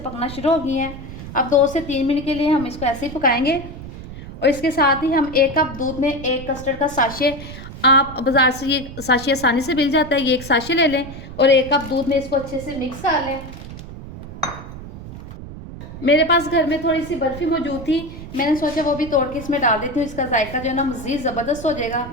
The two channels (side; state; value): right; noise; rumble, 12 dB below the sound